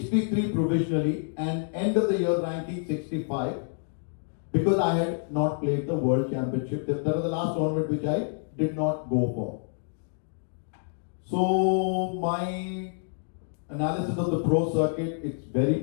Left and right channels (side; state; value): right; silent; digital silence